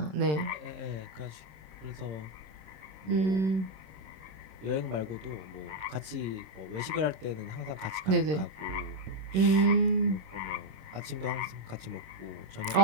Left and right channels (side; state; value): left; late; 26 ms